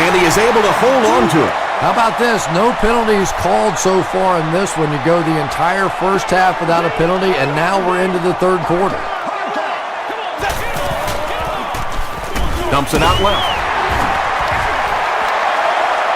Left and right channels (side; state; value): both; identical; correlation 1.00